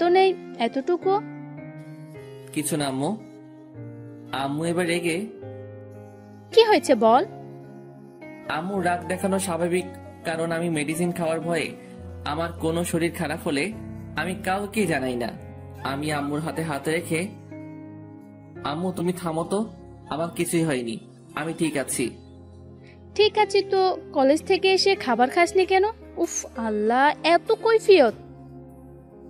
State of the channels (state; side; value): identical; both; correlation 1.00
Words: নেই এতটুকু। কিছু না আম্মু। আম্মু এবার রেগে, কি হয়েছে বল? আম্মু রাগ দেখানো স্বাভাবিক, কারণ আমি মেডিসিন খাওয়ার ভয়ে আমার কোনো শরীর খারাপ হলে আমি কাউকে জানাই না। আমি আম্মুর হাতে হাত রেখে, আম্মু তুমি থামো তো, আমার কিছুই হয়নি, আমি ঠিক আছি। ঠিক আছে তো, কলেজ থেকে এসে খাবার খাসনি কেন? উফ আল্লাহ, এত কৈফিয়ত।